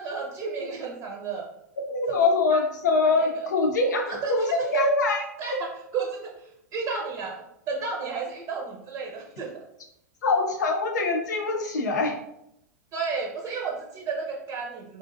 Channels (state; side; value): normal; both; correlation -0.02